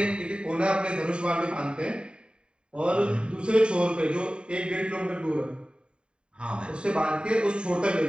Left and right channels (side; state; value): left; late; 0.051 ms